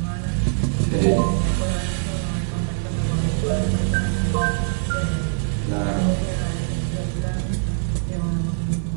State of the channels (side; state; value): left; silent; 64 dB below the other